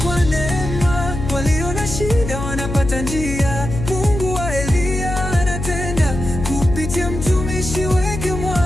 kwa neema, walio na shida wanapata njia. Mungu wa Eliya anatenda kupitia mtumishi wake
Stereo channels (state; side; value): noise; left; hum, 6 dB below the sound